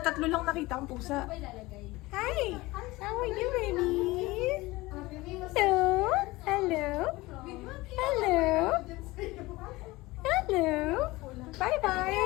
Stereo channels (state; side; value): quieter; right; 20.5 dB